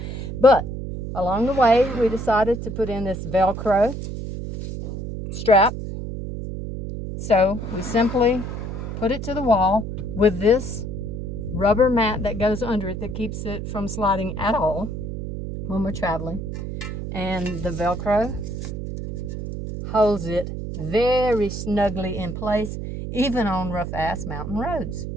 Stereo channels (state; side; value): noise; right; hum, 6 dB below the sound